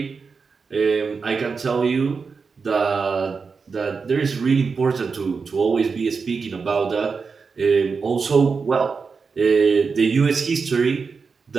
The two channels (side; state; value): left; quieter; 5.1 dB